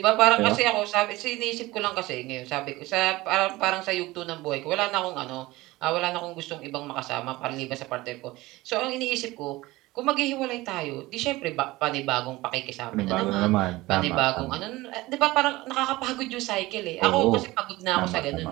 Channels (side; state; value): left; quieter; 19.5 dB